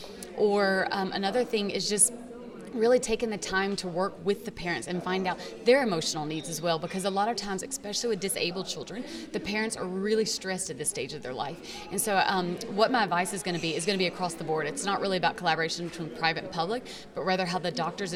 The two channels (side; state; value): both; identical; correlation 1.00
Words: Or another thing is just really taking the time to work with the parents and find out their emotional needs as well, because a lot of times, especially with disabled children, the parents are really stressed at this stage of their life. And so what my advice is going to be across the board. It's not really about collaboration between private and public, but rather how the doctors